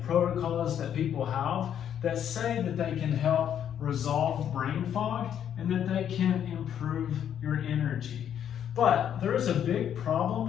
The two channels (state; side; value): quieter; right; 9.4 dB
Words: protocols that people have that say that they can help resolve brain fog and that they can improve your energy. But there is a big